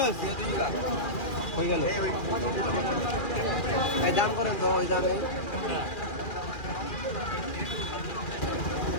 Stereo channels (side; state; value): right; late; 2.4 ms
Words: হয়ে গেল। এই দাম করেন তো, ওই দামে।